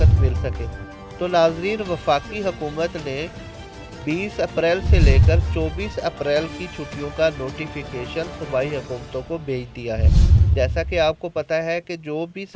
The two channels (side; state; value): both; identical; correlation 1.00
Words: मिल सके। तो नाजरीन, वफाकी हुकूमत ने 20 अप्रैल से लेकर 24 अप्रैल की छुट्टियों का नोटिफिकेशन सूबाई हुकूमतों को भेज दिया है। जैसा कि आपको पता है कि जो भी